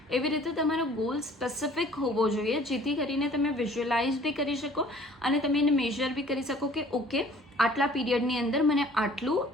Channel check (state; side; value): normal; both; correlation 0.53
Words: એવી રીતે તમારો ગોલ સ્પેસિફિક હોવો જોઈએ, જેથી કરીને તમે વિઝ્યુઅલાઇઝ બી કરી શકો અને તમે એને મેઝર બી કરી શકો કે ઓકે, આટલા પીરિયડની અંદર મને